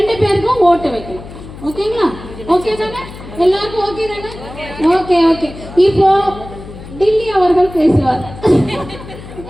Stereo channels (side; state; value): left; noise; hum, 15 dB below the sound